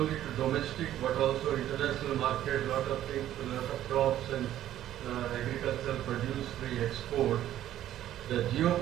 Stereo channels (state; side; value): quieter; left; 12.4 dB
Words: to domestic but also international market. Lot of things, lot of crops and agricultural produce we export. The